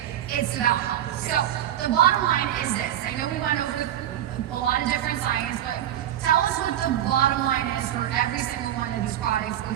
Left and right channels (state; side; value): quieter; left; 11.8 dB